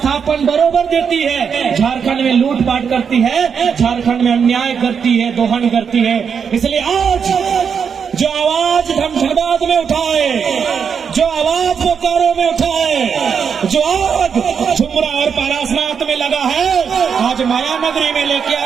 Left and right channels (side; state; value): left; quieter; 6.7 dB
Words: बरोबर देती है। झारखंड में लूटपाट करती है, झारखंड में अन्याय करती है, दोहन करती है। इसलिए आज जो आवाज धनबाद में उठाए, जो आवाज बोकारो में उठाए, जो आग झुमरा और पारासनाथ में लगा है, आज माया नगरी में लेके